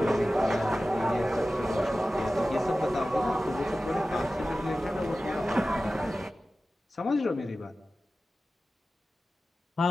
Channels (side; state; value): both; normal; correlation 0.95